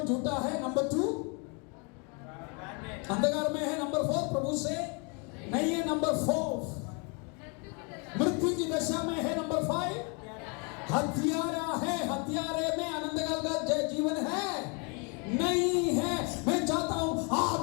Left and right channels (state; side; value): quieter; right; 34.1 dB